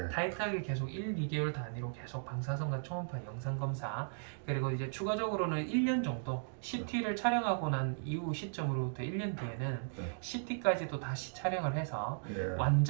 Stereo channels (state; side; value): silent; left; digital silence